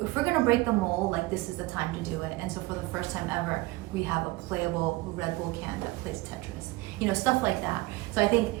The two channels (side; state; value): left; quieter; 20.9 dB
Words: gonna break the mold, like this is the time to do it. And so for the first time ever, we have a playable Red Bull can that plays Tetris. You know, stuff like that. So I think